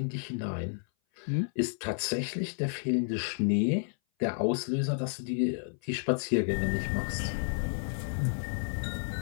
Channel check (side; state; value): right; silent; 57 dB below the other